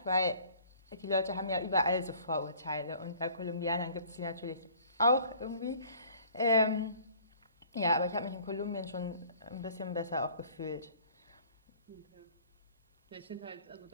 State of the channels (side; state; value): both; inverted; correlation -0.53